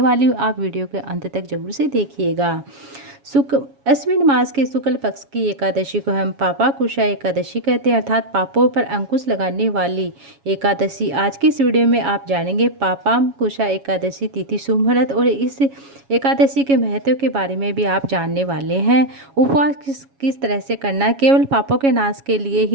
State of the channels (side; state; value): left; late; 7.2 ms